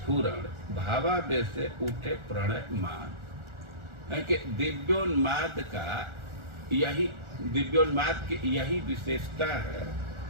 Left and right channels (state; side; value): late; left; 1.4 ms